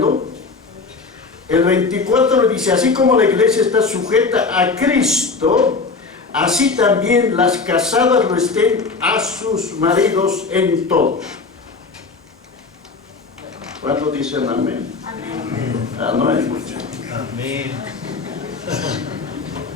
El 24 dice: así como la iglesia está sujeta a Cristo, así también las casadas lo estén a sus maridos en todo. ¿Cuántos dicen amén? Amén. No es mucho. Amén.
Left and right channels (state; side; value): quieter; right; 4.2 dB